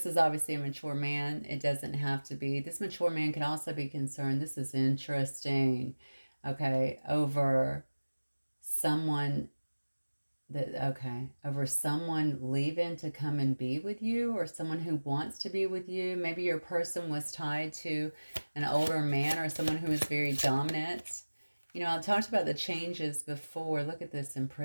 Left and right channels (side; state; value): both; inverted; correlation -1.00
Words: is obviously a mature man. It doesn't have to be. This mature man can also be concerned. This is interesting. Okay, over someone Okay, over someone leaving to come and be with you, or someone who wants to be with you. Maybe your person was tied to an older man or someone who is very dominant. You know, I talked about the changes before. Look at this